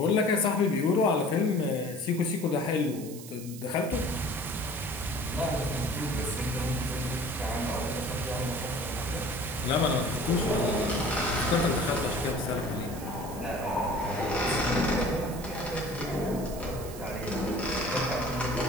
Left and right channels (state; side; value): noise; right; hiss, 15 dB below the sound